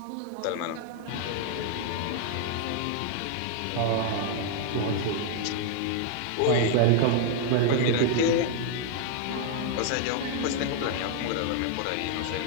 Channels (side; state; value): both; different; correlation 0.00